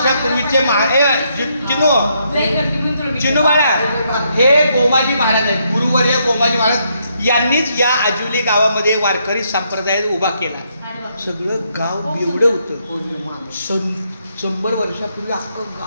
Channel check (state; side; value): inverted; both; correlation -0.76